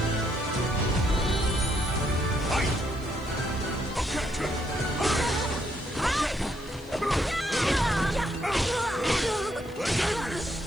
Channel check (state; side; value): noise; left; hiss, 25 dB below the sound